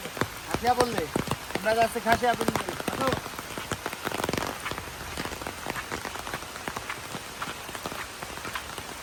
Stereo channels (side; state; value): both; identical; correlation 1.00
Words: খাসিয়া বললে আমরা যাচ্ছে খাসিয়া বললে।